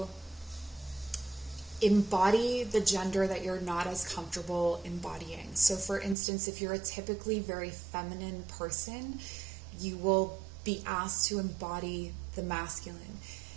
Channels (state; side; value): drops out; left; at 6.2 s